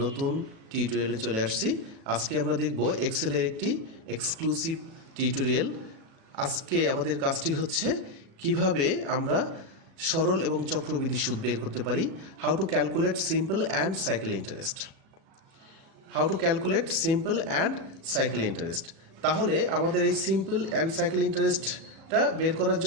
টিউটোরিয়ালে চলে আসছি। আজকে আমরা দেখব এক্সেলের একটি এক্সক্লুসিভ টিউটোরিয়াল। আজকে আমাদের কাজটি হচ্ছে কিভাবে আমরা সরল এবং চক্রবৃদ্ধি সুদ বের করতে পারি। How to calculate simple and cycle interest. তাহলে আমাদের এই সিম্পল অ্যান্ড সাইকেল ইন্টারেস্টটা বের করার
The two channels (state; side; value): late; left; 37 ms